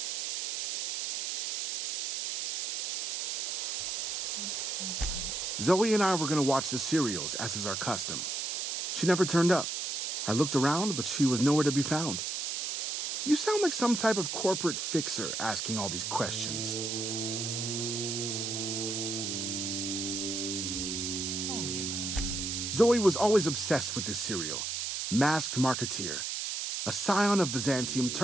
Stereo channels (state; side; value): noise; right; hiss, 2 dB below the sound